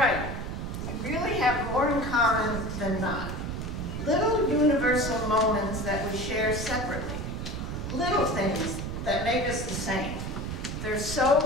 We really have more in common than not. Little universal moments that we share separately. Little things that make us the same. They're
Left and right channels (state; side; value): noise; right; rumble, 5 dB below the sound